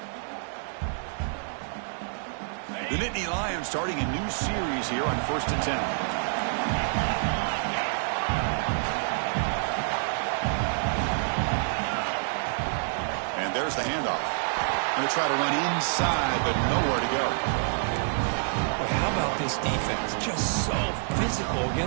The Nittany Lions starting a new series here on 1st and 10. And there's the handoff. Going to try to run inside, but nowhere to go. Well, how about this defense? Just so physical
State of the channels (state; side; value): silent; left; digital silence